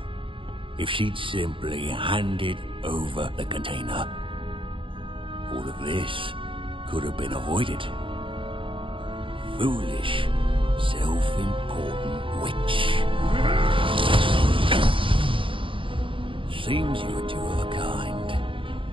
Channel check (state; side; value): late; left; 0.25 ms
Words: If she'd simply handed over the container, all of this could have been avoided. Foolish, self-important witch. Seems you were two of a kind.